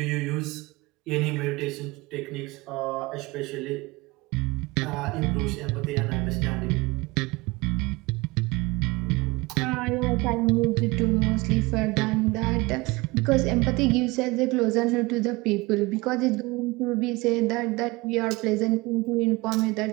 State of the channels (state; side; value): quieter; left; 23.3 dB